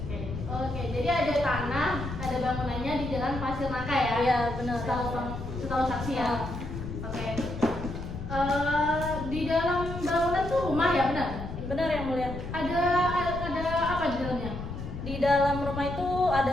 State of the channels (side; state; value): left; noise; rumble, 8 dB below the sound